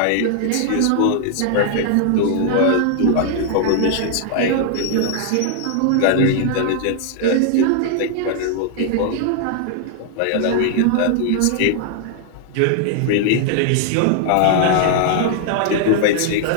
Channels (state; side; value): different; both; correlation 0.00